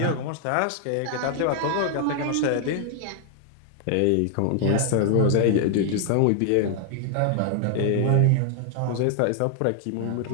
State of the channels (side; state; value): both; different; correlation 0.00